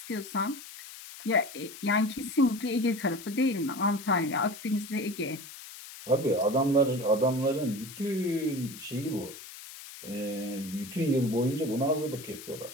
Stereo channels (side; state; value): left; noise; hiss, 14 dB below the sound